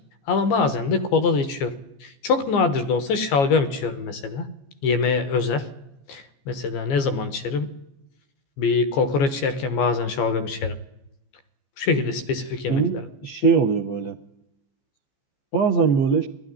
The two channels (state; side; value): late; right; 15 ms